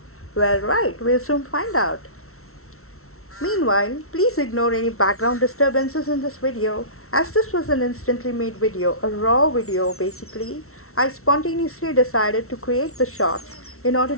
Well, right, we'll soon find out. Meanwhile, please ignore any background disturbances in this video, as this was an instantly made video, a raw video basically. I spontaneously decided to create the shots in order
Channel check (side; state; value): right; late; 0.63 ms